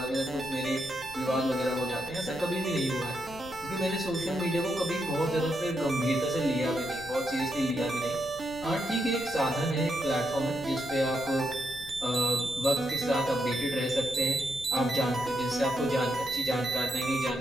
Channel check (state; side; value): noise; left; rumble, 18 dB below the sound